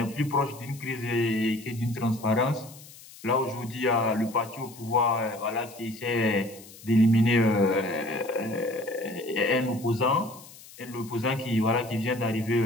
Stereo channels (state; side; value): noise; left; hiss, 19 dB below the sound